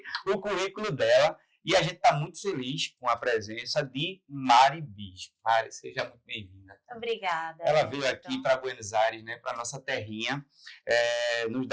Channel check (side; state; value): both; identical; correlation 1.00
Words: o currículo dela e a gente está muito feliz com a presença de Mari Bispo. Mari, seja muito bem-vinda. Obrigada. Ela veio aqui para Buenos Aires, né, para nossa terrinha, nos